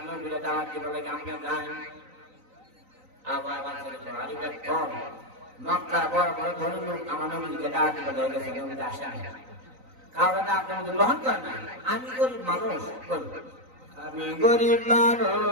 নবীরে দাওয়াত দিতে বলে আমরা যাই। আবার আরিফের কম মক্কা বড় বড় ধনী লোক আমার নবীকে দাওয়াত দিতে বলে গেছে নবীতে আসে কারণ আপনি গ্রহণ করেন না। আমি গরিব মানুষ আমি গরিব মানুষ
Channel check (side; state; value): left; late; 3.9 ms